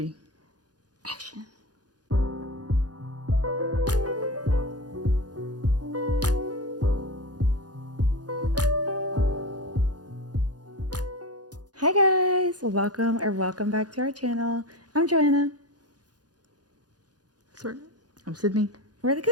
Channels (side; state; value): left; late; 0.69 ms